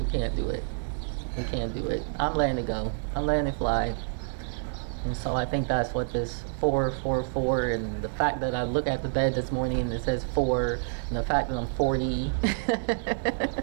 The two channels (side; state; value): left; silent; digital silence